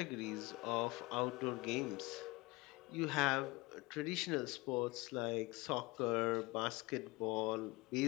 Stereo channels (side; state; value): right; quieter; 23.3 dB